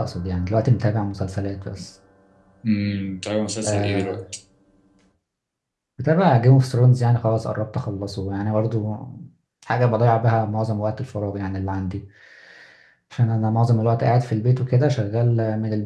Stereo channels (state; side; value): identical; both; correlation 1.00